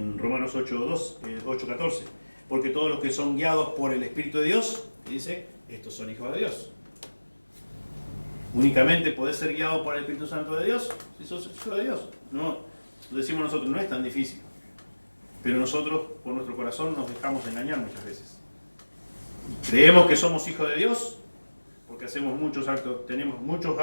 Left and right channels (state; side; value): inverted; both; correlation -1.00